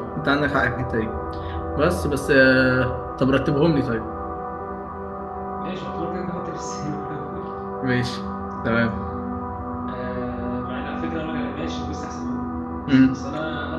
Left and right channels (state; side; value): identical; both; correlation 1.00